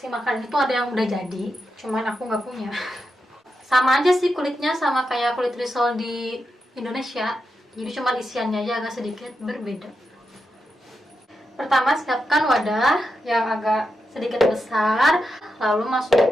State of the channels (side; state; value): both; normal; correlation 0.87